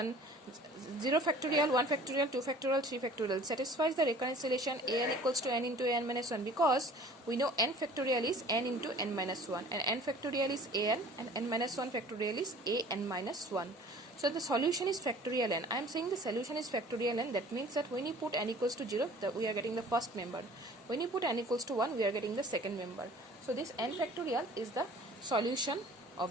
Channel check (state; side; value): normal; both; correlation 0.48